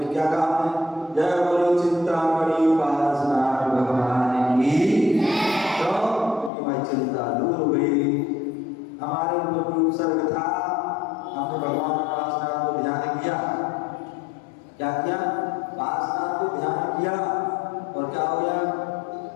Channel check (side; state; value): right; drops out; at 6.5 s